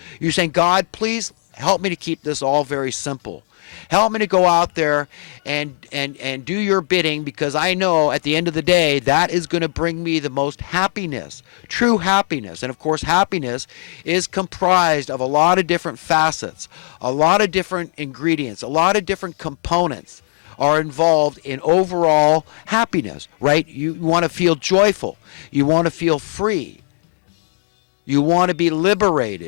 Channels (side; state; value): right; silent; digital silence